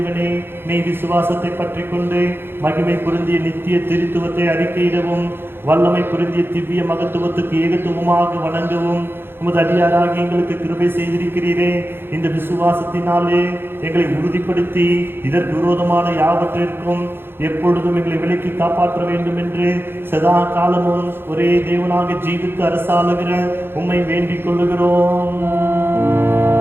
மெய் விசுவாசத்தை பற்றி கொண்டு மகிமை பொருந்திய நித்திய திருத்துவத்தை அறிக்கையிடவும் வல்லமை பொருந்திய திவ்ய மகத்துவத்துக்கு ஏகத்துவமாக வணங்கவும் உமது அடியாராகி எங்களுக்கு கிருபை செய்திருக்கிறீரே. இந்த விசுவாசத்தினாலே எங்களை உறுதிப்படுத்தி இதற்கு விரோதமான யாவற்றிற்கும் எப்பொழுதும் எங்களை விலக்கி காப்பாற்ற வேண்டும் என்று சதா காலமும் ஒரே தேவனாக ஜீவித்து அரசாளுகிற உம்மை வேண்டிக் கொள்ளுகிறோம்.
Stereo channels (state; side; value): late; left; 0.10 ms